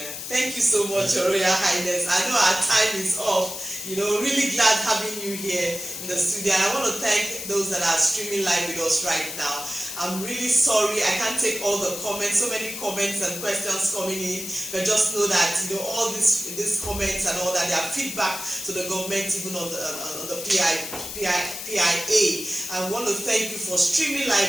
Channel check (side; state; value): left; noise; hiss, 8 dB below the sound